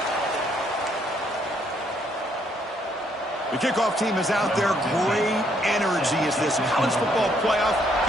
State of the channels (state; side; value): normal; both; correlation 0.70